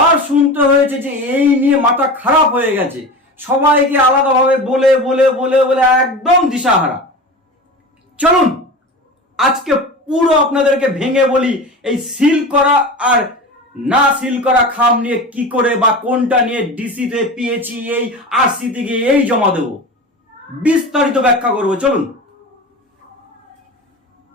শুনতে হয়েছে যে এই নিয়ে মাথা খারাপ হয়ে গেছে। সবাইকে আলাদাভাবে বলে বলে বলে বলে একদম দিশাহারা। চলুন আজকে পুরো আপনাদেরকে ভেঙে বলি এই সিল করা আর না সিল করা খাম নিয়ে কি করে বা কোনটা নিয়ে ডিসিতে পেয়েছি, এই আরসি থেকে এই জমা দেব, বিস্তারিত ব্যাখ্যা করব। চলুন।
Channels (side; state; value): both; normal; correlation 0.30